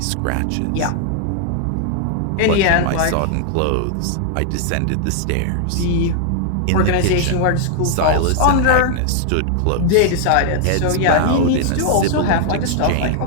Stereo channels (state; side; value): different; both; correlation 0.00